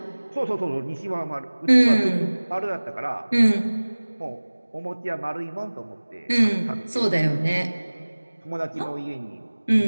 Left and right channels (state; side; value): inverted; both; correlation -1.00